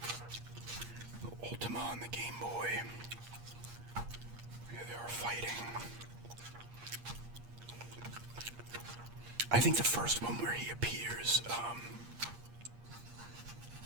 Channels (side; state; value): left; late; 8.5 ms